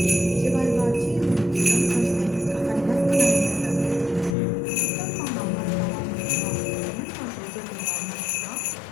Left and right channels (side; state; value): right; drops out; at 4.4 s